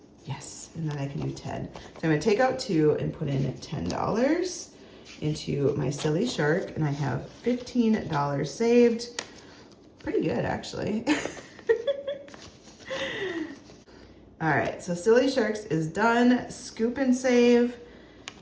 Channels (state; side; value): identical; both; correlation 1.00